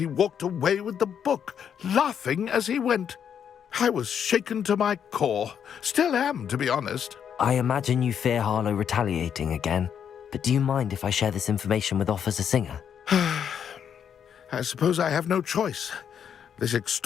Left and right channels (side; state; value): right; quieter; 8.2 dB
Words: walked away with the book, laughing as he went. I was shaken to my core. Still am, to be honest. I imagine you fear Harlow retaliating again, but do you mind if I share this information with Officer Singer? I suppose I have no choice. This